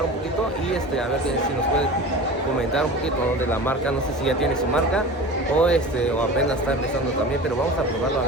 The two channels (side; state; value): both; normal; correlation 0.34